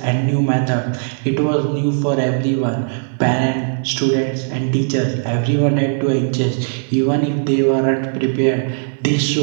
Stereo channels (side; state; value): left; silent; digital silence